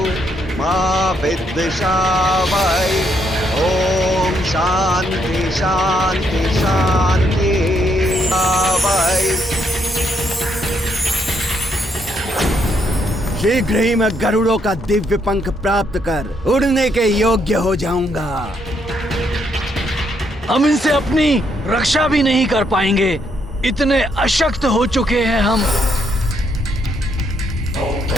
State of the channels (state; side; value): normal; both; correlation 0.74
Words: मा विद्विषावहै। ओम शांति शांति शांति आवहै। शीघ्र ही मैं गरुड़ों का दिव्य पंख प्राप्त कर उड़ने के योग्य हो जाऊंगा। हम इनसे अपनी रक्षा भी नहीं कर पाएंगे, इतने अशक्त हो चुके हैं हम।